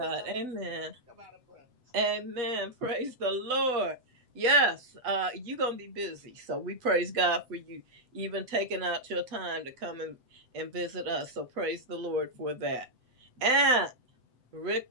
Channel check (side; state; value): left; late; 7.9 ms